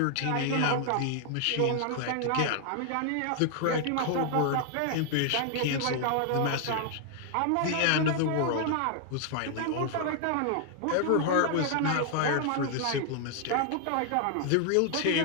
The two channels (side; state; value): both; different; correlation 0.00